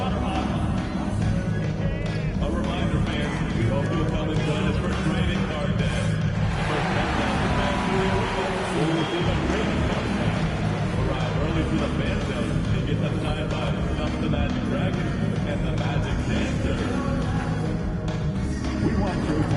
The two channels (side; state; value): both; identical; correlation 1.00